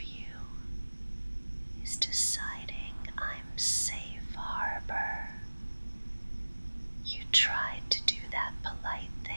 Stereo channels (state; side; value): inverted; both; correlation -1.00